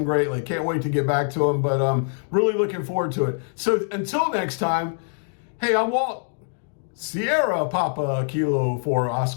greatly. Can't wait to get back to them, but really looking forward to it. So until next time, hey, I'm Walt. Sierra Papa Kilo for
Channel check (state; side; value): silent; right; 63 dB below the other